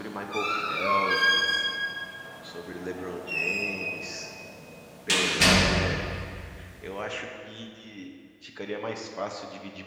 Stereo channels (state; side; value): identical; both; correlation 1.00